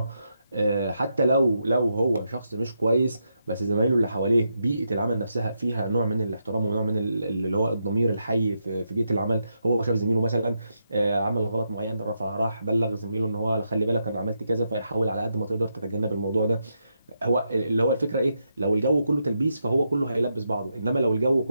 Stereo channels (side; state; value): both; inverted; correlation -0.83